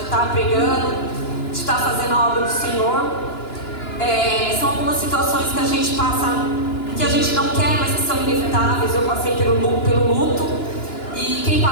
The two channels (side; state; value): right; late; 2.9 ms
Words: estar pregando, de estar fazendo a obra do Senhor. São algumas situações que a gente passa, que a gente não quer, mas que são inevitáveis. Eu passei pelo luto, e quem